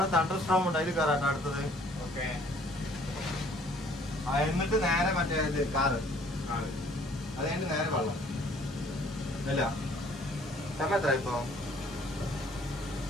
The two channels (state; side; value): normal; both; correlation 0.58